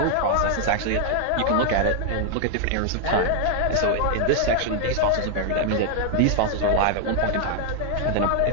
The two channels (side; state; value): both; different; correlation 0.00